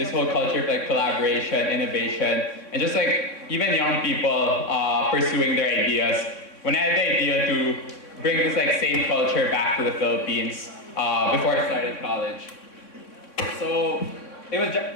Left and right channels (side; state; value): right; late; 3.6 ms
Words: this whole culture of like collaboration, innovation, and just like even young people pursuing their ideas. When I had the idea to bring this like same culture back to the Philippines before I started college. So it was